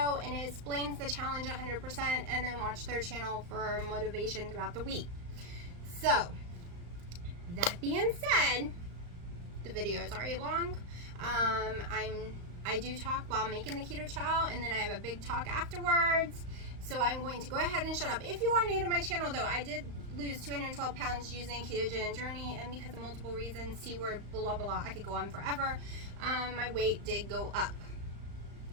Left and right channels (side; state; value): left; late; 35 ms